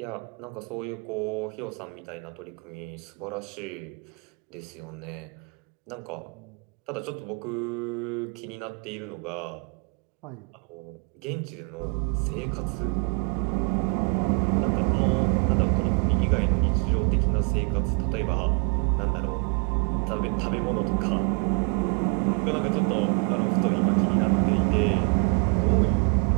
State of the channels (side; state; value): left; quieter; 36.6 dB